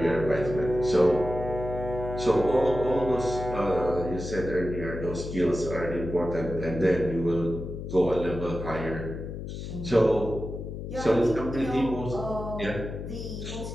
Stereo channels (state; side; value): noise; left; hum, 7 dB below the sound